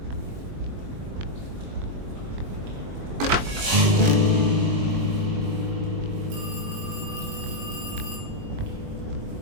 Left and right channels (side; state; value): left; late; 21 ms